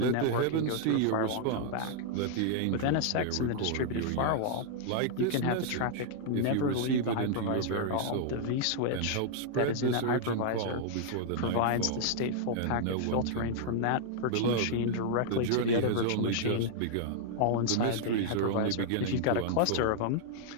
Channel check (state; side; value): different; both; correlation -0.01